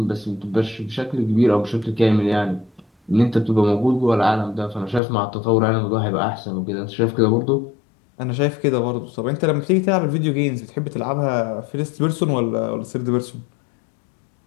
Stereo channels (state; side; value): drops out; right; at 5.0 s